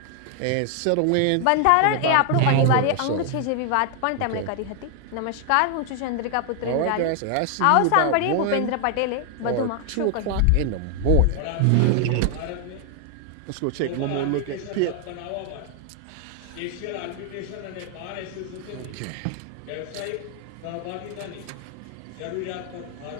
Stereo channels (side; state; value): both; different; correlation 0.00